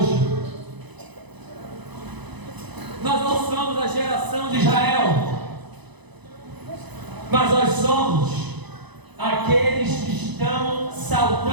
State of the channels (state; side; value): late; left; 0.99 ms